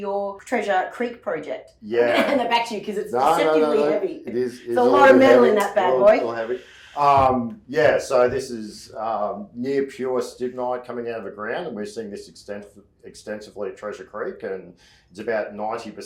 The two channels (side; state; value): both; identical; correlation 1.00